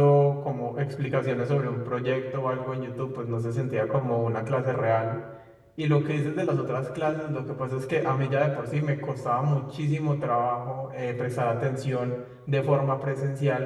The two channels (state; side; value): identical; both; correlation 1.00